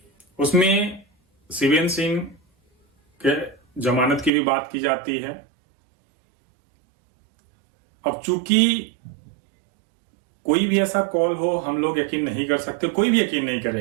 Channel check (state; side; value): drops out; left; at 4.3 s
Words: उसमें शिवेंद्र सिंह के जमानत की भी बात की जाती है। अब चूंकि कोई भी ऐसा कॉल हो, हम लोग यकीन नहीं कर सकते, कोई भी यकीन नहीं